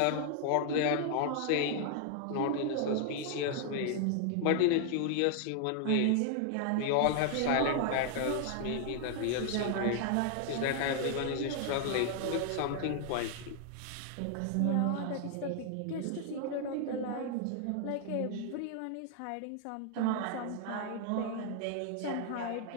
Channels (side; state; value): both; different; correlation 0.00